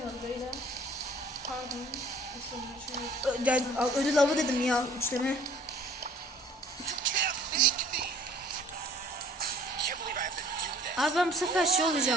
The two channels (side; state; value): both; normal; correlation 0.54